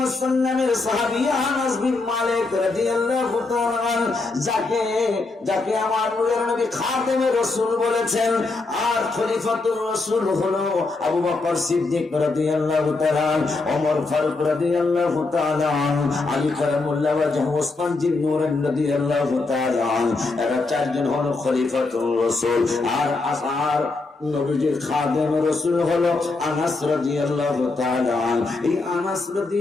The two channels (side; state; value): right; quieter; 3.6 dB